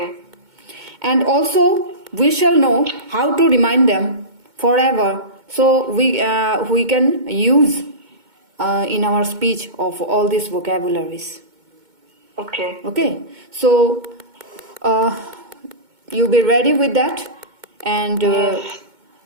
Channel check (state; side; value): late; left; 2.2 ms